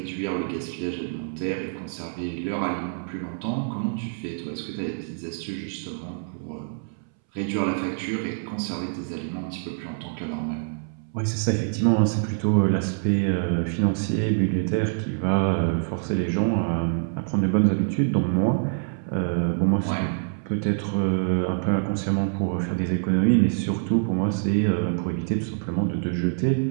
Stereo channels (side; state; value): left; silent; 61 dB below the other